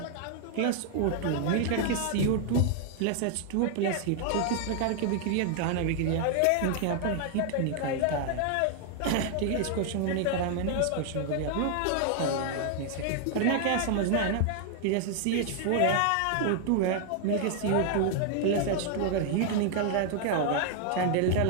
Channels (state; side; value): different; both; correlation 0.00